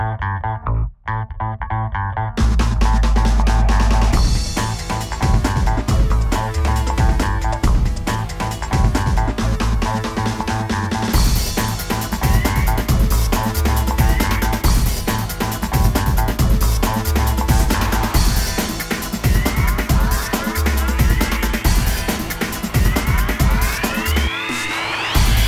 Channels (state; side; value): identical; both; correlation 1.00